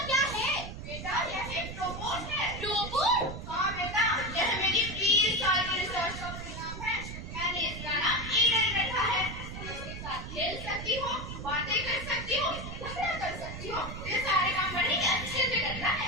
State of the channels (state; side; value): noise; right; rumble, 9 dB below the sound